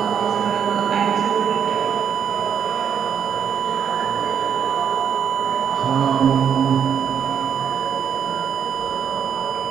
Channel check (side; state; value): left; quieter; 8.0 dB